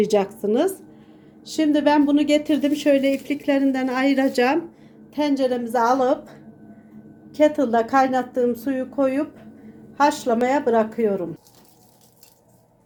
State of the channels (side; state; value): both; identical; correlation 1.00